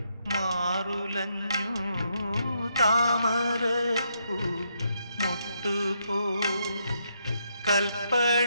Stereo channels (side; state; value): both; inverted; correlation -0.77